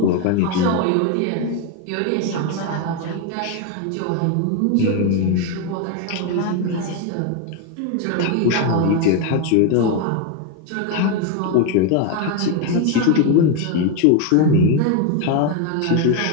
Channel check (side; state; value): both; different; correlation 0.02